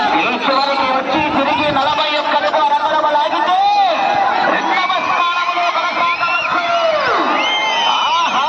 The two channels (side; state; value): both; identical; correlation 1.00